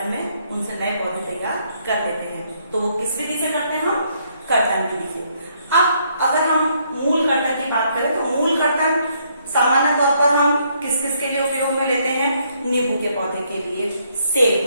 में उनसे नए पौधे तैयार कर लेते हैं। तो वो किस विधि से करते हैं? हम कर्तन विधि से। अब अगर हम मूल कर्तन की बात करें तो मूल कर्तन सामान्य तौर पर हम किस किस के लिए उपयोग में लेते हैं? नींबू के पौधे के लिए,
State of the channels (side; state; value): both; inverted; correlation -0.71